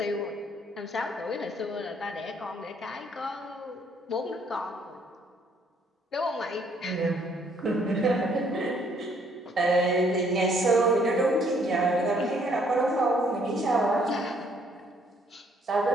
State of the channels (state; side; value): normal; both; correlation 0.65